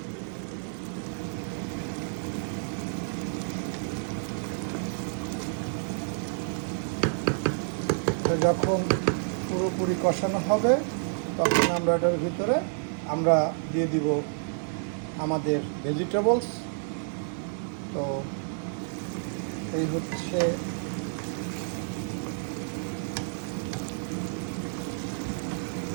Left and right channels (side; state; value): left; silent; digital silence